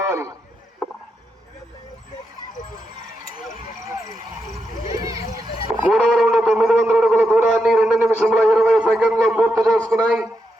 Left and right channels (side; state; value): both; normal; correlation 0.85